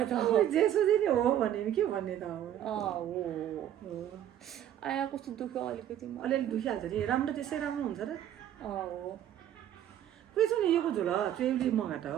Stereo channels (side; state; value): left; quieter; 11.1 dB